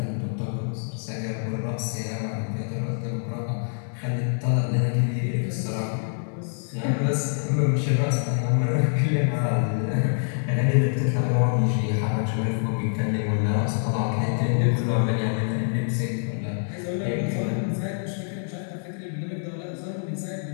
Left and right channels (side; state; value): right; silent; digital silence